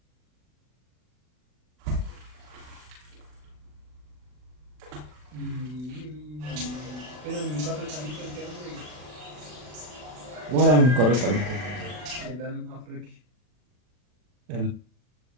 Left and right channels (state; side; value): late; left; 40 ms